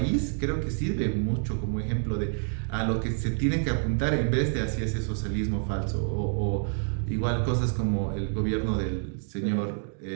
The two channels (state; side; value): silent; left; 59 dB below the other